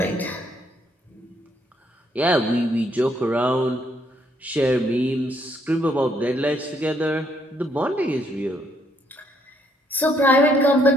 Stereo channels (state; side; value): normal; both; correlation 0.70